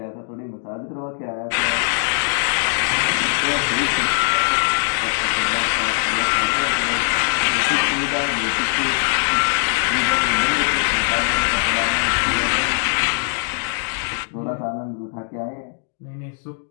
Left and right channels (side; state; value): right; silent; 65 dB below the other